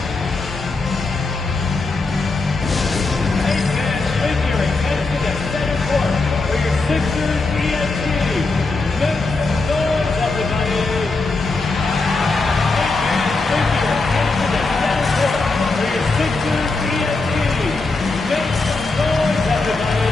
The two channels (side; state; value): right; quieter; 3.6 dB